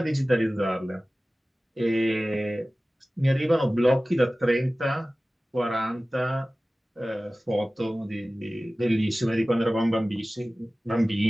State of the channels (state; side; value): normal; both; correlation 0.97